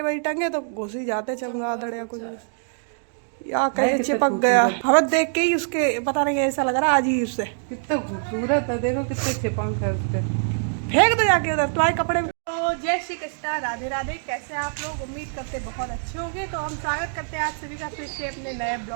वही टंगे तो घुस ही जाते चमगादड़ या कुछ या कहीं चिपक गया। हमें देख के ही उसके पता नहीं ऐसा लग रहा अजीब से। कितना खूबसूरत है, देखो कितने चिपंख है उसके। फेंक दो जाके उधर तुम्हारे कपड़े में। तो जय श्री कृष्णा, राधे राधे। कैसे आप लोग? उम्मीद करते बहुत अच्छे होंगे। तो हम स्वागत करते हैं आप सभी का फिर से अपने नए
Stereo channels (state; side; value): silent; left; digital silence